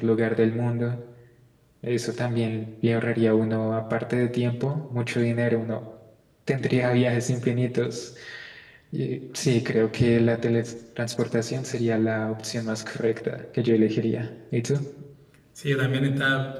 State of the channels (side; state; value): both; identical; correlation 1.00